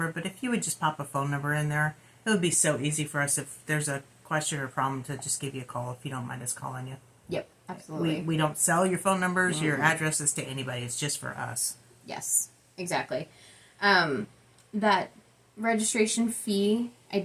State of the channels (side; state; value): both; identical; correlation 1.00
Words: but if you would just pop a phone number in there, it would be so easy for us if there's a question or problem to just give you a call if you don't mind us calling you. Yep, absolutely. We don't sell your phone numbers, your addresses to anybody. It's just for us. Yes, exactly. That registration fee, I